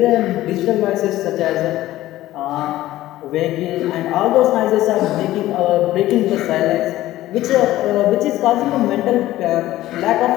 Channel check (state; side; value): quieter; right; 15.3 dB